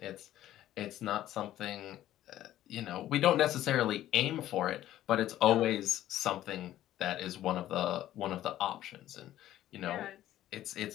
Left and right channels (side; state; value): right; quieter; 13.3 dB